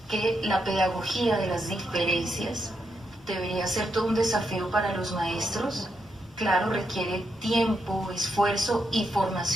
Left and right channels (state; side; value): normal; both; correlation 0.81